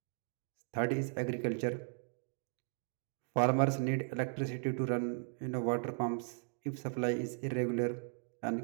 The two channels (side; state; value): left; silent; 53 dB below the other